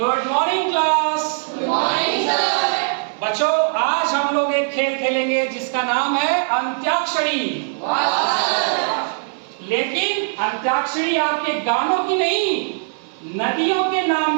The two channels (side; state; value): left; silent; 60 dB below the other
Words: morning class. Good morning sir. बच्चों, आज हम लोग एक खेल खेलेंगे जिसका नाम है अंत्याक्षरी। लेकिन अंत्याक्षरी आपके गानों की नहीं, नदियों के